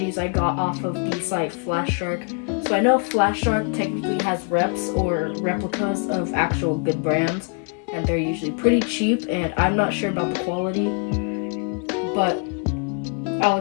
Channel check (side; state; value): right; quieter; 38.2 dB